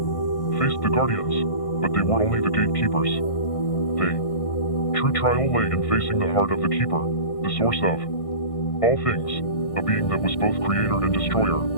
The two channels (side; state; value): right; late; 1.6 ms